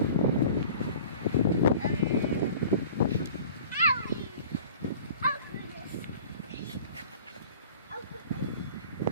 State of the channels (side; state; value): both; inverted; correlation -0.45